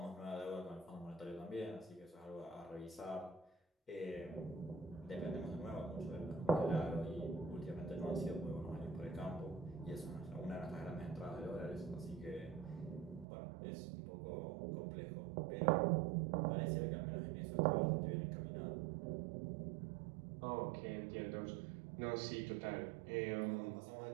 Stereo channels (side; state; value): left; drops out; at 13.2 s